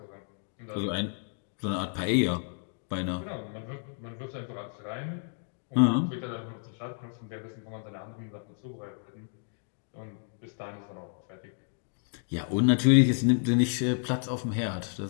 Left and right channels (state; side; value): silent; right; 57 dB below the other